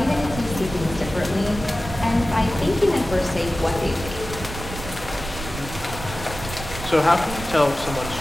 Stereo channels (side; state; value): right; noise; rumble, 10 dB below the sound